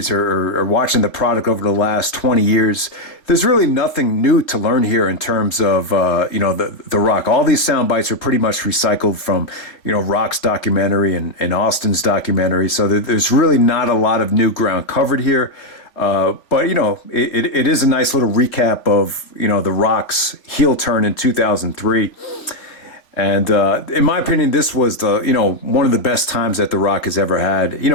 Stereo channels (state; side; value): late; right; 3.5 ms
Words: or watching the product over the last 20 years, there's really nothing new to learn here in terms of, the Rock. All these sound bites are pretty much recycled from, Rock's documentary and Austin's documentary. So there's really not a lot of new ground covered here. But, it is a nice little recap of, the Rock's heel turn in 2003. And in my opinion, this was one of the best times that The Rock has ever had.